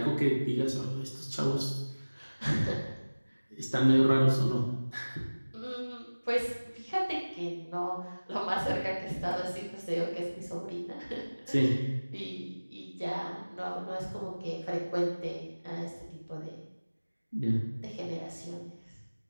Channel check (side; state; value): both; inverted; correlation -1.00